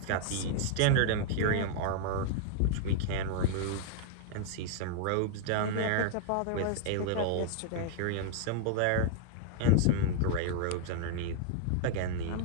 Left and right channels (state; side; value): different; both; correlation -0.01